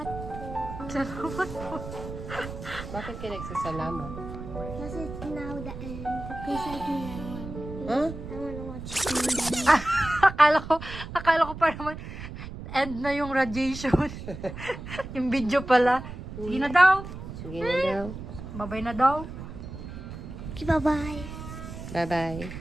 po. Salamat po. Bakit ka nagsasalamat? Kasi it's now the end. Please like me now. Ha? I wanna watch akala ko pa naman end na yung radiation. Yung video pala. Sige na daw. Sige na daw. Babay na daw. Okay, bye-bye. Bye-bye.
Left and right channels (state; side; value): noise; right; rumble, 10 dB below the sound